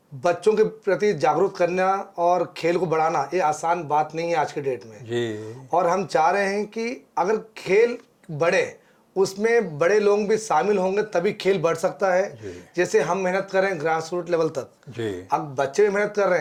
बच्चों के प्रति जागरूक करना और खेल को बढ़ाना ये आसान बात नहीं है आज के डेट में। और हम चाह रहे हैं कि अगर खेल बढ़े, उसमें बड़े लोग भी शामिल होंगे तभी खेल बढ़ सकता है। जैसे हम मेहनत कर रहे हैं ग्रास रूट लेवल तक, अब बच्चे भी मेहनत कर रहे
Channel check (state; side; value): identical; both; correlation 1.00